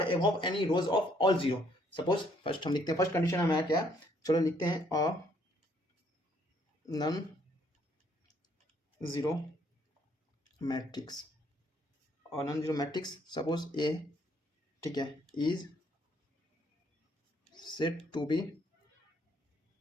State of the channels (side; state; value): both; normal; correlation 0.67